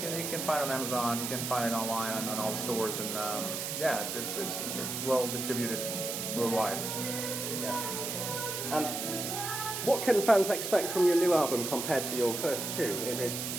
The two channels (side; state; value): right; noise; hiss, 4 dB below the sound